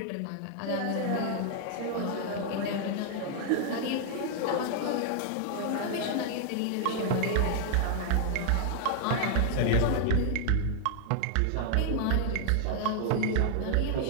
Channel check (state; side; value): different; both; correlation 0.00